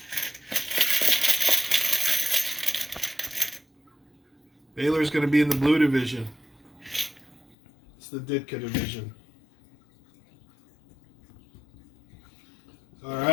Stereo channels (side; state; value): right; drops out; at 7.6 s